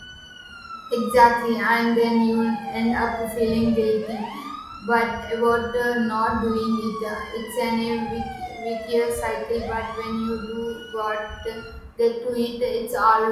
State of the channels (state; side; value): identical; both; correlation 1.00